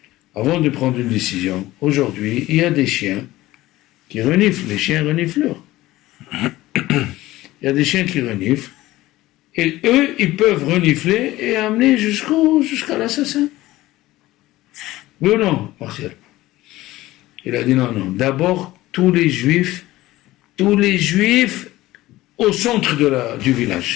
avant de prendre une décision, aujourd'hui, il y a des chiens qui reniflent, les chiens renifleurs. Il y a des chiens qui reniflent, et eux, ils peuvent renifler et amener jusqu'à l'assassin. Oui ou non, Martial? Il a dit non. D'abord, tous les juifs au centre du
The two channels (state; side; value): quieter; right; 17.1 dB